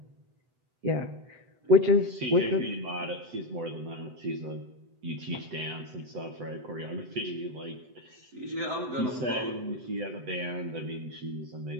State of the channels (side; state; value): left; late; 7.9 ms